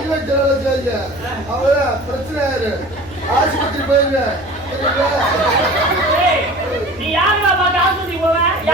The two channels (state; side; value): normal; both; correlation 0.40